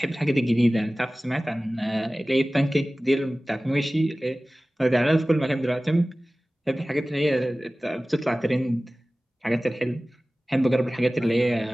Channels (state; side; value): normal; both; correlation 0.97